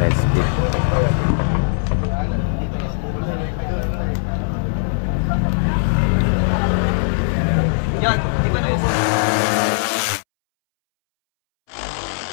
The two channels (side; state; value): right; silent; 66 dB below the other